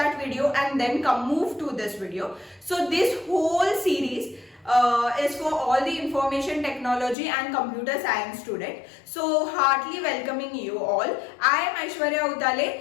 video and then come move to this video. So this whole series is for all the information technology and computer science student. So heartily welcoming you all. I am Aishwarya Utale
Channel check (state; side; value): drops out; right; at 7.2 s